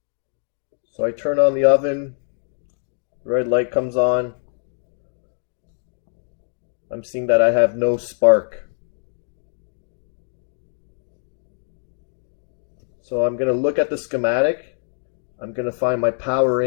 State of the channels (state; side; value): silent; right; digital silence